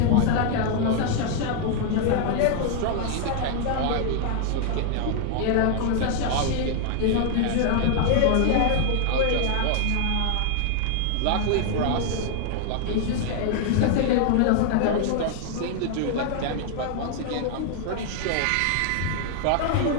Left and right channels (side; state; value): both; different; correlation 0.00